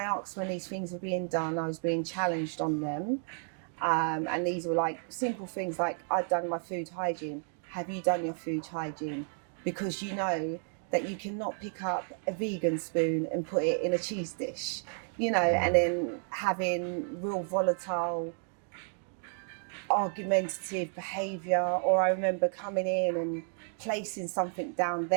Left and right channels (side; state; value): left; silent; 57 dB below the other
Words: asked when these things were being done, I was being challenged on them. And these were like simple things like, I'd done my food hygiene. Have you done your food hygiene? Because you know that you cannot pick up a vegan spoon and put it in a cheese dish, and then having real volatile, argumentative behaviour. Or I remember coming in and placing something down